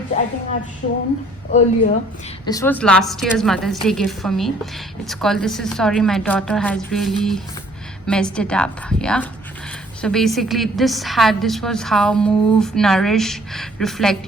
I think I've shown earlier. This was last year's Mother's Day gift for me. It's called This Is Sorry, My Daughter Has Really Messed It Up. Yeah. So basically this was how move, nourish, reflect,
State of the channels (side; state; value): both; normal; correlation 0.59